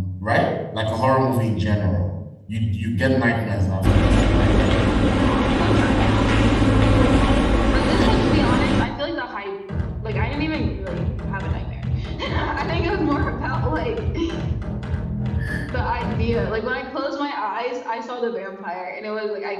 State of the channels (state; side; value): identical; both; correlation 1.00